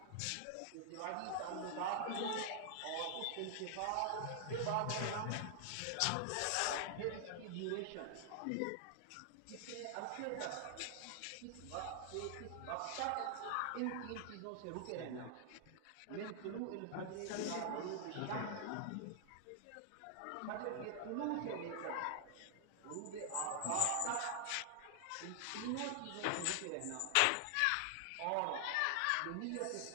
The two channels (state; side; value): different; both; correlation 0.00